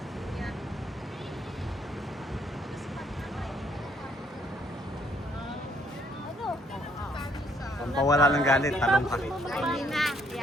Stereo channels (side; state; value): both; normal; correlation 0.67